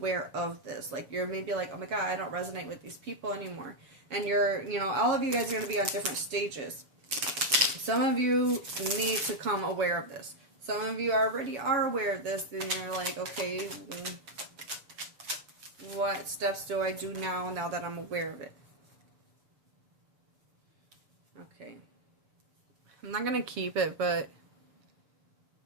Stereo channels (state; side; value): late; left; 7.3 ms